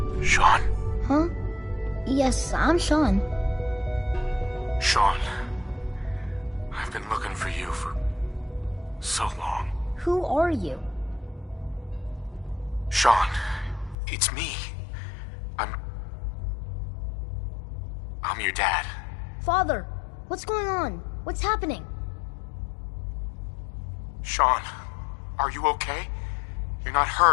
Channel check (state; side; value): drops out; right; at 14.0 s